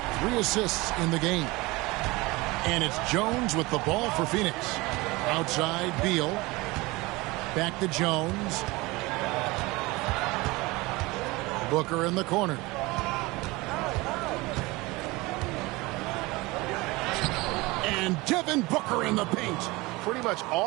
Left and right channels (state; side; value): quieter; left; 22.5 dB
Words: 3 assists in the game. And it's Jones with the ball for Phoenix. Outside, Beal. Back to Jones. Booker in the corner. And Devin Booker in the paint. Pretty much